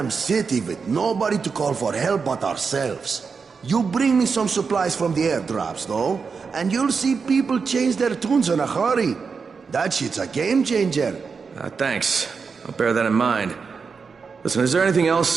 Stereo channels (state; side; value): quieter; left; 5.3 dB